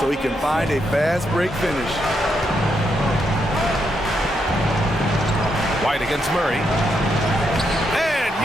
he can find a fast break finish. White against Murray. And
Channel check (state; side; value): normal; both; correlation 0.80